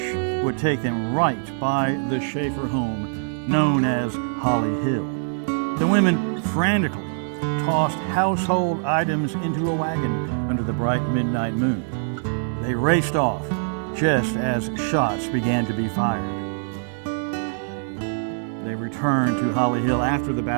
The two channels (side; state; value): left; silent; 61 dB below the other